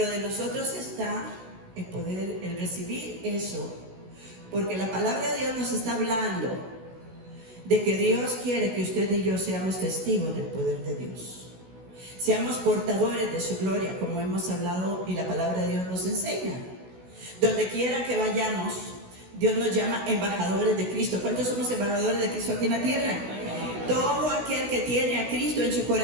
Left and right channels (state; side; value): late; left; 16 ms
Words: de nosotros está el poder, el recibir eso, porque la palabra de Dios nos está hablando de que Dios quiere que usted y yo seamos testigos del poder de Dios. Seamos portadores de su gloria, como hemos hablado y la palabra de Dios nos enseña. Donde quiera que vayamos, Dios nos llama embajadores de Cristo. ¿Cuántos somos embajadores de Cristo aquí en la tierra? Todo aquel que tiene a Cristo en su